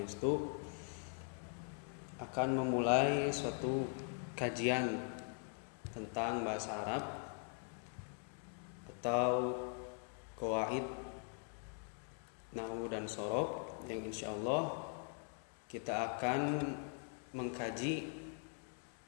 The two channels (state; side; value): silent; right; 50 dB below the other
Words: akan memulai suatu kajian tentang bahasa Arab atau qawaid nahwu dan shorof yang insyaallah kita akan mengkaji